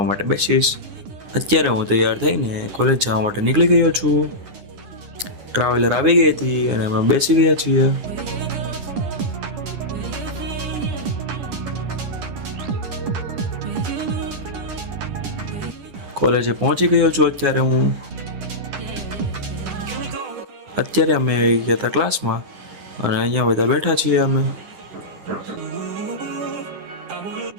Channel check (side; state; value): left; late; 9.8 ms